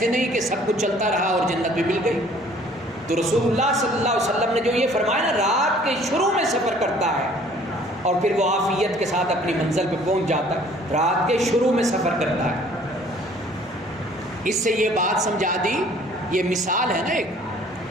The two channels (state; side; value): normal; both; correlation 0.55